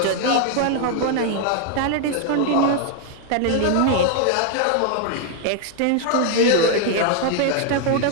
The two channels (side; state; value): both; different; correlation 0.00